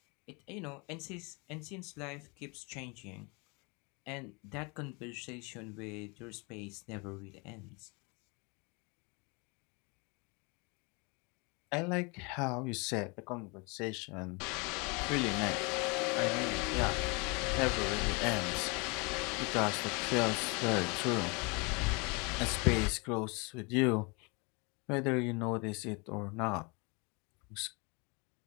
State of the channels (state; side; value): quieter; right; 30.0 dB